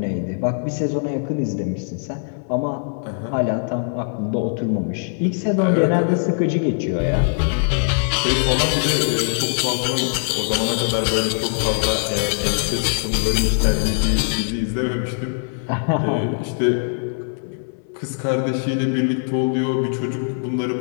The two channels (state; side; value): silent; right; digital silence